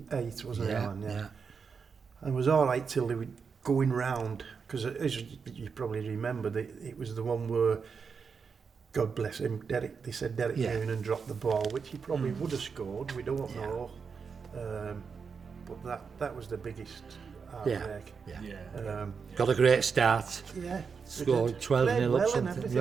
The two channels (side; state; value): left; quieter; 5.7 dB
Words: wasn't it, Alan? Yeah. And it was all right till they were going round, because as you probably remember, it was the one where, God bless him, they said Derek Yeah. Noonan dropped the ball, which he probably would have scored, we don't know. But that was the biggest heartbreak. Yeah. Got a great start. Yeah. Scored 12-0 Played up well and something. everything,